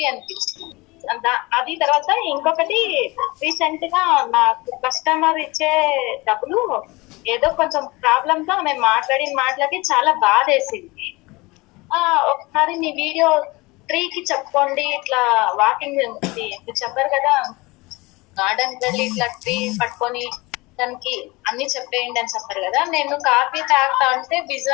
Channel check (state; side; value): quieter; right; 23.3 dB